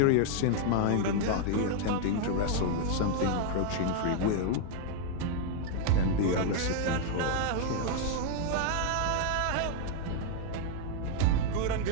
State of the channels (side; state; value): both; different; correlation 0.00